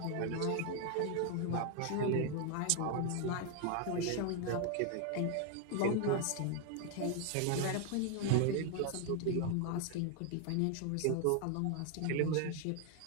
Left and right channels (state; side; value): different; both; correlation 0.00